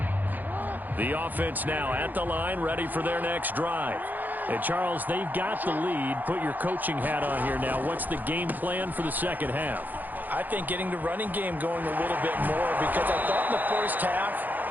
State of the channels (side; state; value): left; late; 0.085 ms